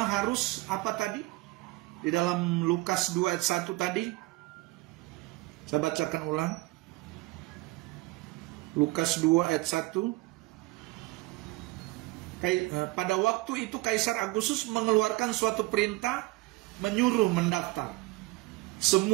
harus apa tadi? Di dalam Lukas 2 ayat 1 tadi, saya bacakan ulang. Lukas 2 ayat 1. Pada waktu itu Kaisar Agustus mengeluarkan suatu perintah menyuruh mendaftar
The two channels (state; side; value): quieter; left; 21.0 dB